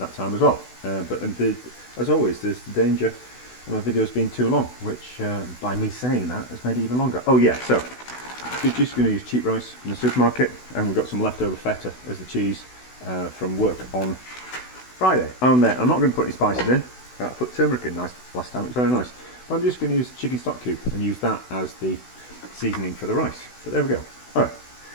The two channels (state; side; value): late; right; 16 ms